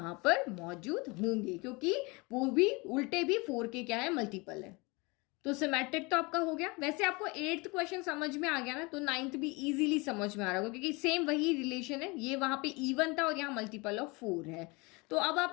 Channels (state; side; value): quieter; right; 26.7 dB